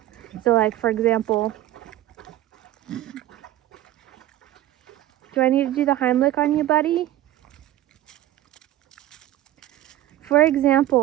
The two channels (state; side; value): quieter; left; 14.1 dB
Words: So like for example, do I need to do the Heimlich on you, buddy? For